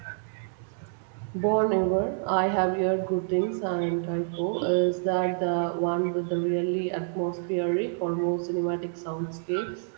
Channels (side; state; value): left; silent; digital silence